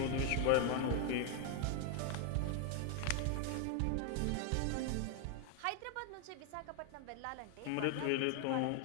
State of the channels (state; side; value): different; both; correlation 0.00